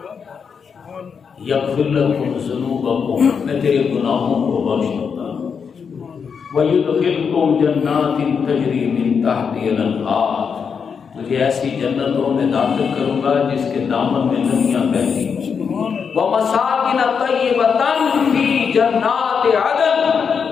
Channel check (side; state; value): right; quieter; 6.3 dB